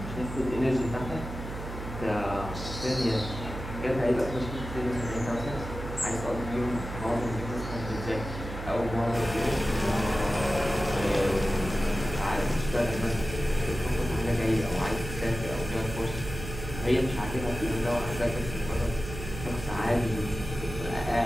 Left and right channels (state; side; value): noise; right; hum, 8 dB below the sound